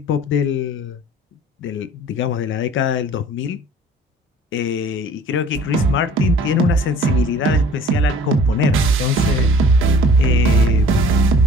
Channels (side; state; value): both; normal; correlation 0.49